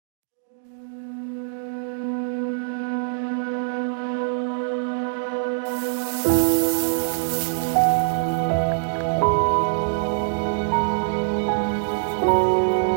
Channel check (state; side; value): silent; left; digital silence